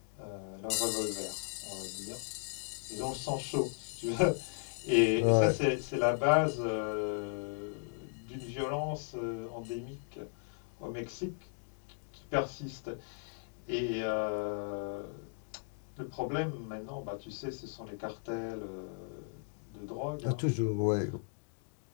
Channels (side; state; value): right; silent; digital silence